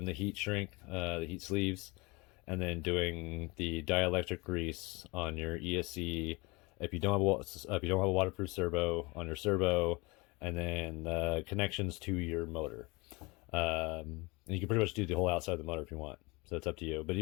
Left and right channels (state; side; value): quieter; right; 25.8 dB